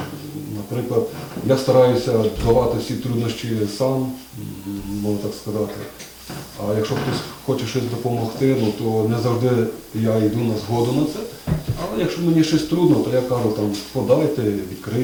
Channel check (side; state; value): both; identical; correlation 1.00